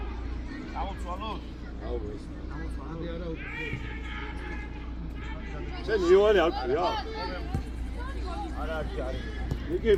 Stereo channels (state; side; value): identical; both; correlation 1.00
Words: აუცვალოთ. შენ იოანე არ ქვია? არა, არის. ნიკი,